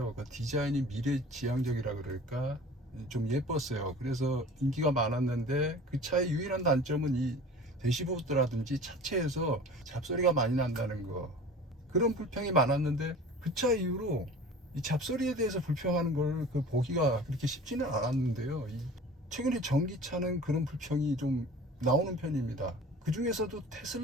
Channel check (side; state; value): both; normal; correlation 0.41